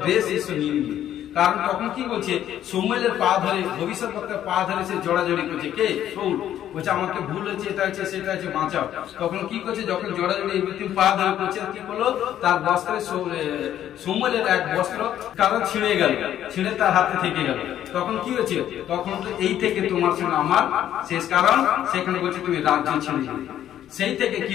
গ্রেস ঈশ্বর নিয়ে নিল। কারণ তখন কি বলছে, সমুয়েলের পা ধরে, ভবিষ্যৎবক্তার পা ধরে সে জড়াজড়ি করছে। কে? শাউল। বলছে আমাকে ভুল হয়েছে, এটা হচ্ছে সেটা হচ্ছে, বাঁচাও। তখন কি করছে, যখন জড়াজড়ি পা ধরে করছে, কি করলো, তার বস্ত্রে সমুয়েলের এক বস্ত্র কারণ ছিঁড়ে গেল, ছিঁড়ে তার হাতে থেকে গেল। তখন কি হয়েছে, তখন এই থেকে তোমার সঙ্গে আমার শেষ। কারণ সেখানে বলছে তুমি রাজ্য ছেড়ে দিলে। সেই থেকে কি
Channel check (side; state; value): right; quieter; 11.2 dB